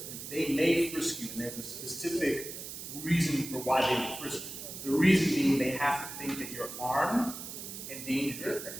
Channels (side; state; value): right; noise; hiss, 9 dB below the sound